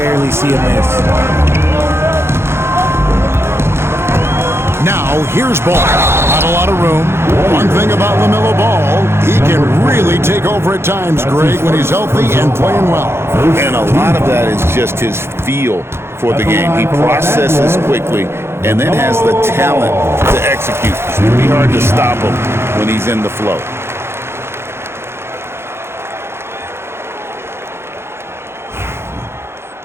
see a miss. Now, here's Ball. Not a lot of room. One thing about LaMelo Ball, he can really take over at times, Greg, when he's healthy and playing well. And a lot of that is just his feel for the game. He processes quickly and then has the talent to execute. It's pretty hard to stop him when he's in the flow.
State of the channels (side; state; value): left; late; 0.12 ms